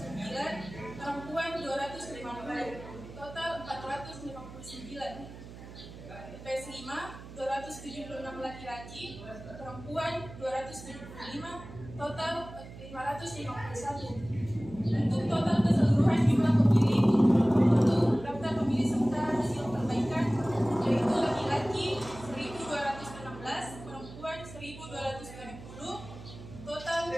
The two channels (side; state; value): right; noise; hum, 15 dB below the sound